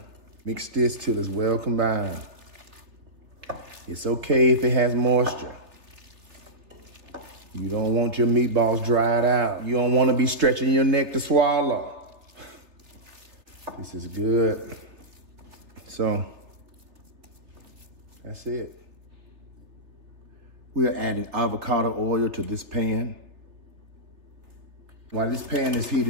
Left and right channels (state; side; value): late; left; 3.2 ms